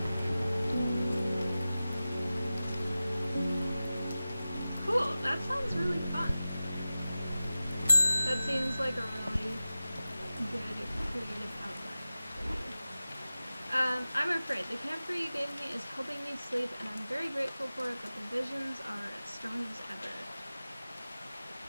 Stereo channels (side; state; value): both; inverted; correlation -0.95